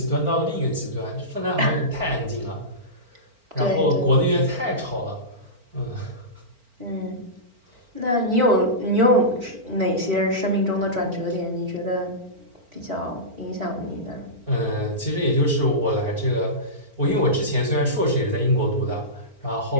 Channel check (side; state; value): left; late; 4.4 ms